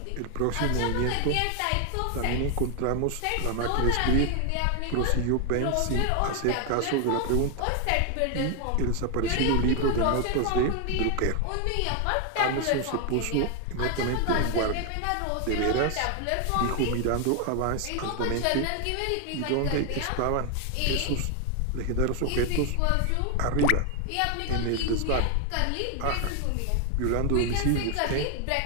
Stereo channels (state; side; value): different; both; correlation 0.01